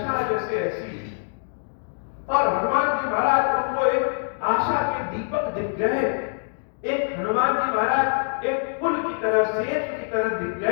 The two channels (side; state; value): right; silent; 62 dB below the other